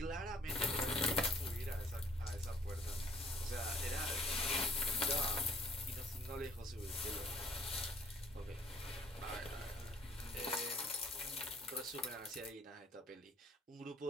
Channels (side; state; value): both; normal; correlation 0.59